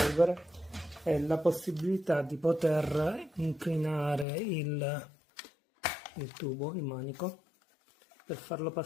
è la possibilità di poter inclinare il tubo, il manico, per farlo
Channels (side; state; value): right; drops out; at 4.2 s